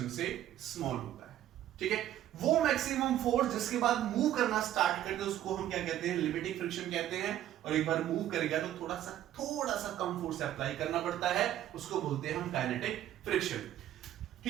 से स्मॉल होता है। ठीक है, वो मैक्सिमम फोर्स जिसके बाद मूव करना स्टार्ट करते हैं उसको हम क्या कहते हैं, लिमिटिंग फ्रिक्शन कहते हैं। और एक बार मूव करेगा तो थोड़ा सा कम फोर्स अप्लाई करना पड़ता है, उसको बोलते हैं हम काइनेटिक फ्रिक्शन।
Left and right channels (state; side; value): quieter; left; 12.2 dB